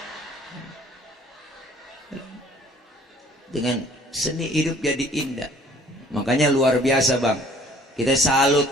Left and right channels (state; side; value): normal; both; correlation 0.55